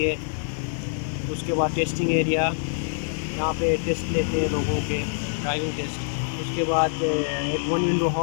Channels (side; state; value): right; silent; digital silence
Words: उसके बाद टेस्टिंग एरिया, यहाँ पे टेस्ट लेते हैं लोगों के, ड्राइविंग टेस्ट। उसके बाद एक 1 विंडो